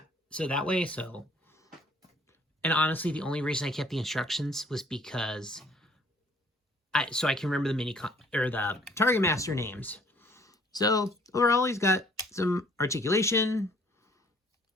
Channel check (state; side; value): normal; both; correlation 0.59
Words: so that way, so. And honestly, the only reason I kept the instructions was because so I can remember the the Targetmaster names. So overall, he's got some articulation.